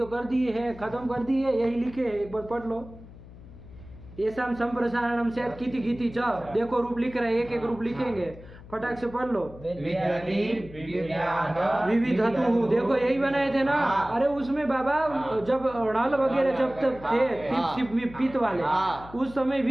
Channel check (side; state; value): left; noise; hum, 18 dB below the sound